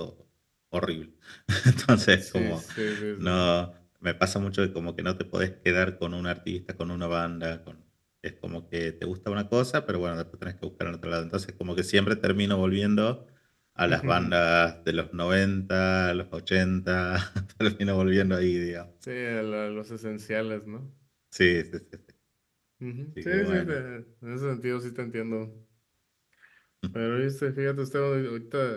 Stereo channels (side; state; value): both; identical; correlation 1.00